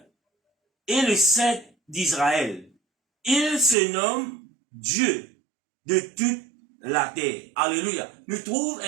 et le Saint d'Israël. Il se nomme Dieu de toute la terre. Alléluia. Nous trouvons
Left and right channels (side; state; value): left; drops out; at 3.8 s